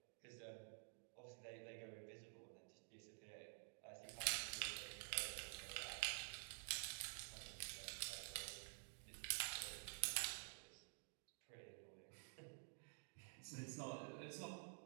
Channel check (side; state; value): left; silent; digital silence